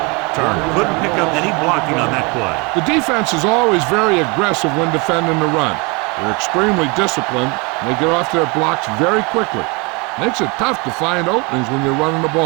Turner couldn't pick up any blocking on that play. The defense is always very aggressive when defending the run. They're extremely disciplined, and they get off their blocks very quickly. Makes it tough to find openings when you're running the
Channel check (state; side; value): quieter; left; 28.8 dB